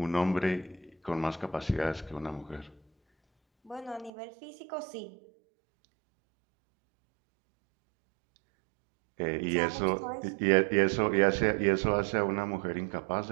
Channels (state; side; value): drops out; left; at 4.1 s